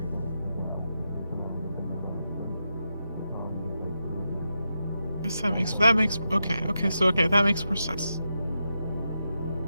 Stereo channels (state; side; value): inverted; both; correlation -0.87